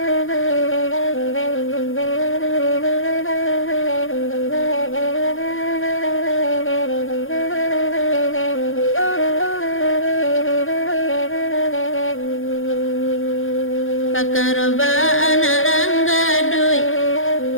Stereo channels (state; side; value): late; right; 0.59 ms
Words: Pakaroba anak ranggadui,